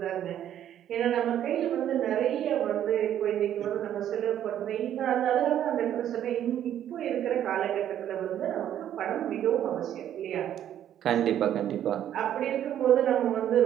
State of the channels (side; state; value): left; quieter; 10.8 dB